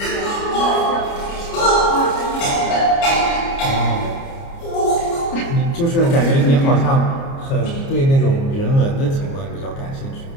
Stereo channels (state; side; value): late; right; 29 ms